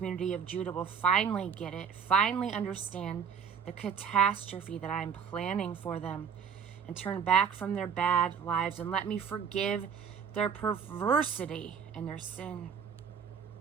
of Judah will finally get it, finally understand the catastrophe that I'm planning for them, and turn back from their bad lives and let me forgive their perversity and their sin.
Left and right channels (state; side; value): quieter; left; 7.0 dB